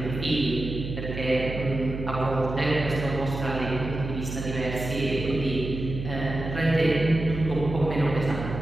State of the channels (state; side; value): noise; right; hum, 7 dB below the sound